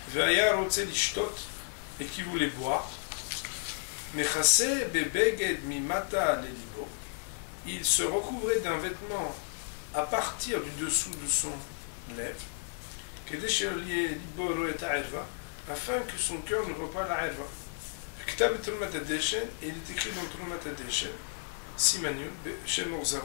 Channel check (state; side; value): silent; right; digital silence